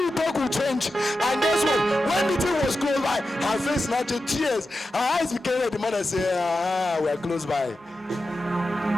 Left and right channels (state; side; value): normal; both; correlation 0.91